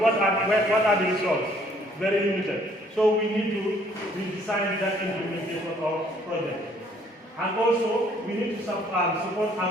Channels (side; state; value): both; normal; correlation 0.62